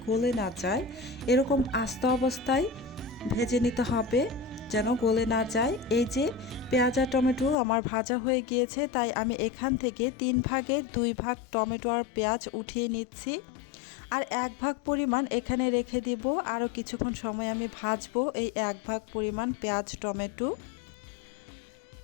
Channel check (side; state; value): right; drops out; at 7.6 s